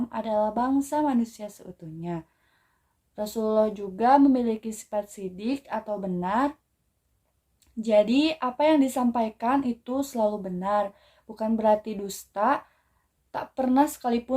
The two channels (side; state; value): both; identical; correlation 1.00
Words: adalah bangsa manusia seutuhnya. Rasulullah juga memiliki sifat sidik atau benar. Jadi apa yang disampaikan itu selalu benar, bukan berarti dusta. Tak pernah